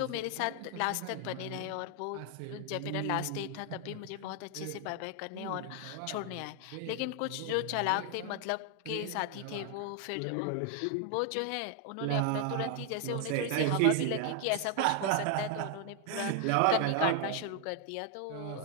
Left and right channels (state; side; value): different; both; correlation 0.00